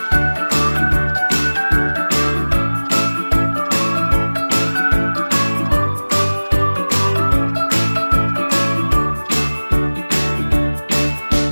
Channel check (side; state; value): both; inverted; correlation -1.00